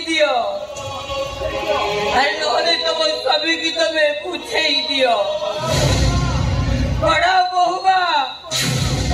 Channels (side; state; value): both; identical; correlation 1.00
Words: दियो अरे नहले तुम सभी की तुम्हें पूछे ही दियो बड़ा बहुगा